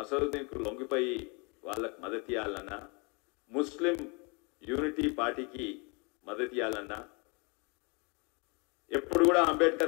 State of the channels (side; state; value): right; quieter; 31.6 dB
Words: అసదుద్దీన్కు లొంగిపోయి వాళ్ళకు మద్దతు ఇవ్వాలన్నా, ముస్లిం యూనిటీ పార్టీకి మద్దతు ఇవ్వాలన్నా? ఎప్పుడు కూడా